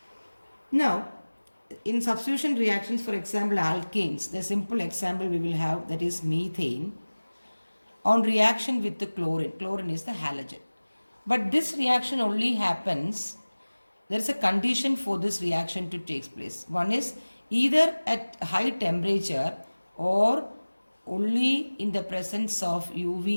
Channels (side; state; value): both; inverted; correlation -1.00